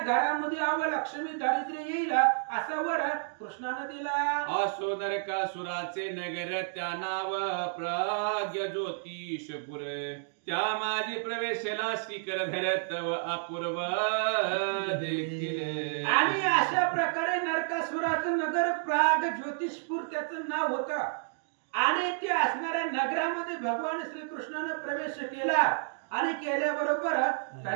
अवलक्ष्मी दारिद्र्य येईल असा वर कृष्णाने दिला. असो नरकासुराचे नगर त्या नाव प्राग्य ज्योतिषपुर त्या माझी प्रवेशला शिखर धरत अपूर्व देखील. आणि अशा प्रकारे नरकासुराचं नगर प्राग ज्योतिषपूर त्याचं नाव होतं. आणि ते असणाऱ्या नगरामध्ये भगवान श्रीकृष्णाने प्रवेश केला आणि केल्याबरोबर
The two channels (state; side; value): silent; left; digital silence